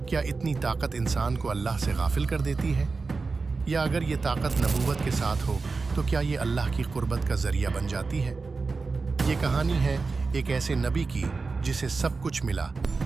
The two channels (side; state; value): left; quieter; 4.2 dB